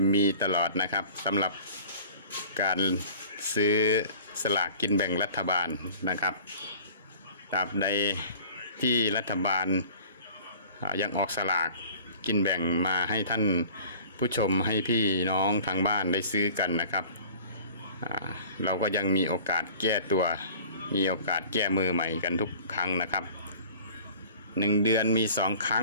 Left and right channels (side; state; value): both; inverted; correlation -0.46